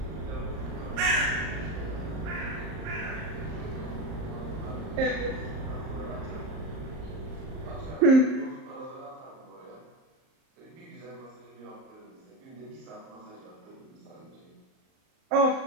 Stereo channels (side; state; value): left; late; 38 ms